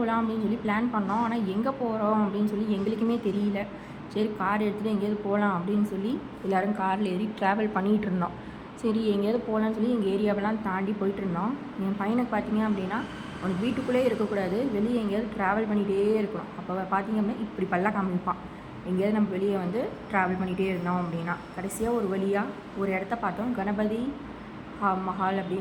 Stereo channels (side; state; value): both; identical; correlation 1.00